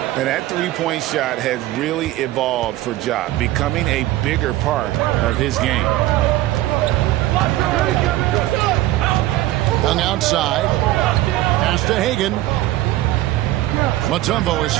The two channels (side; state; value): left; quieter; 15.8 dB